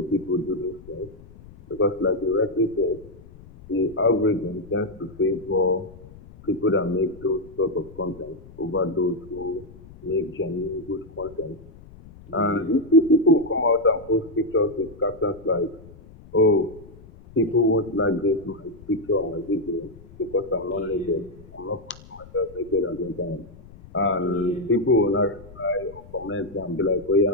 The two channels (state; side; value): noise; left; rumble, 20 dB below the sound